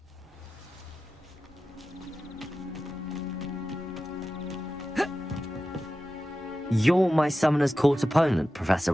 You're my Summoner's Court opponent, Professor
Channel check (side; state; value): both; normal; correlation 0.93